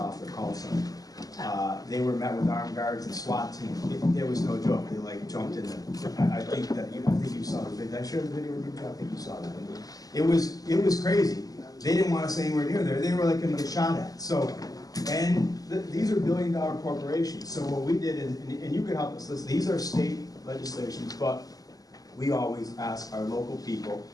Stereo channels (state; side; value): late; right; 0.17 ms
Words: their call center. They were met with armed guards and SWAT team. It was no joke. They jumped in there. I think you saw the video. Did I share the video with you? I think you saw that. It was crazy. They didn't want us anywhere near there. They were like going to get shot at. So, these are billion-dollar corporations. So what we did, and you can help us listen. These are state legislations, but we always ask our local people,